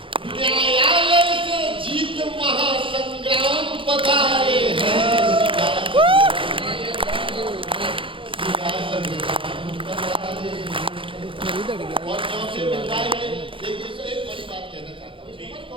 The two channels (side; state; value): left; late; 0.25 ms